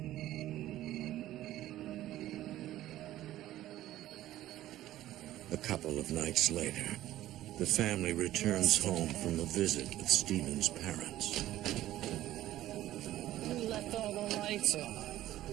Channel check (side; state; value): left; quieter; 14.3 dB